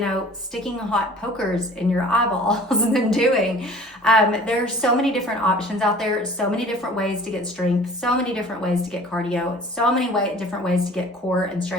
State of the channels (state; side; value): normal; both; correlation 0.47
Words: sticking hot pokers in your eyeballs than doing. There's so many different options out there, so many different ways to get strength, so many different ways to get cardio, so many different ways to get core and